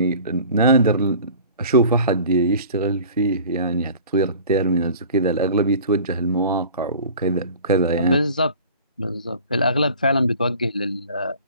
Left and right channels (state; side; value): inverted; both; correlation -0.44